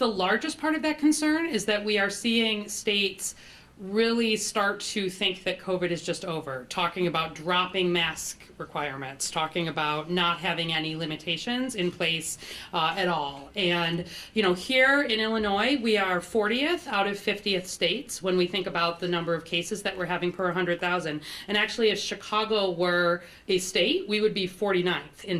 largest part of that concern is that we are seeing states really start to think that COVID is just over, talking about dropping mask requirements, talking about not having any limitations in place at all. And, here in Illinois, we are 40th out of 50th states when we think about the number of cases that we're having per 100,000. And actually, if Chicago were a state, we would be 49th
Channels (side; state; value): both; identical; correlation 1.00